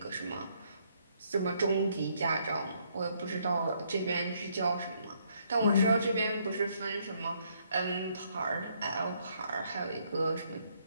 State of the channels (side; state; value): both; inverted; correlation -0.70